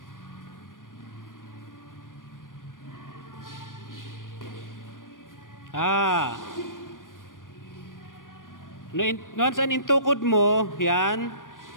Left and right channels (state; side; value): late; right; 0.89 ms